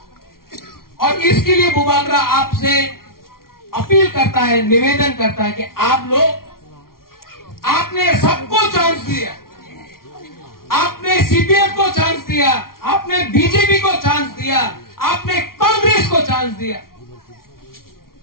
और इसके लिए बुबागरा आपसे अपील करता है, निवेदन करता है कि आप लोग, आपने सबको चांस दिया, आपने सीपीएम को चांस दिया, आपने बीजेपी को चांस दिया, आपने कांग्रेस को चांस दिया,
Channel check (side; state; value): right; late; 0.93 ms